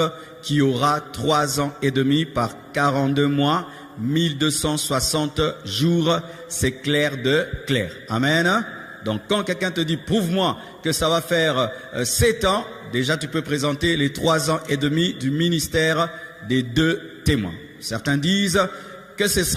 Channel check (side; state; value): both; identical; correlation 1.00